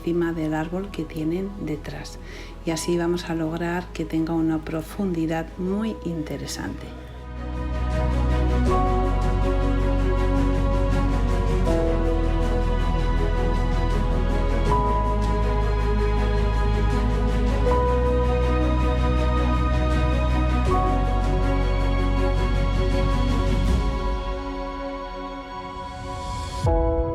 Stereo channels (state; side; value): identical; both; correlation 1.00